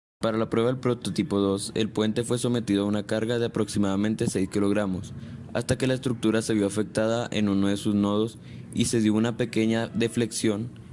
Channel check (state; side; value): identical; both; correlation 1.00